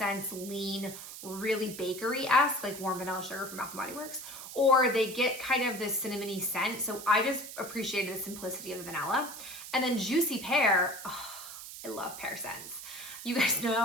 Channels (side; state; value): right; noise; hiss, 11 dB below the sound